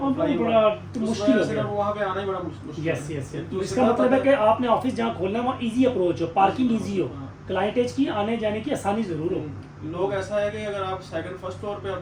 बड़ा मुश्किल हो गया, वहाँ पे आना ही बड़ा मुश्किल। Yes yes yes. इसका मतलब है कि आपने ऑफिस जहाँ खोलना है वहाँ इजी अप्रोच हो, पार्किंग इजी हो, क्लाइंटेज की आने जाने की आसानी जरूर हो। लोग ऐसा है कि अगर आप सेकंड फर्स्ट फ्लोर पे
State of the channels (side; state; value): both; identical; correlation 1.00